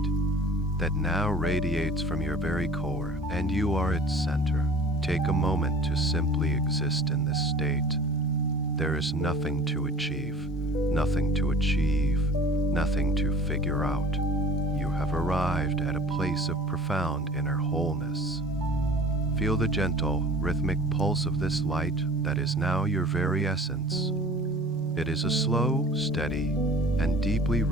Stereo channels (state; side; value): normal; both; correlation 0.45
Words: that now radiates from your very core, and you are its center. Take a moment to simply exist in this state. There is nothing to achieve, nothing to achieve, nothing to figure out. You have arrived at a place of profound inner wholeness. Feel the gentle, rhythmic pulse of this light that is now your very essence. It is a slow, steady, and deeply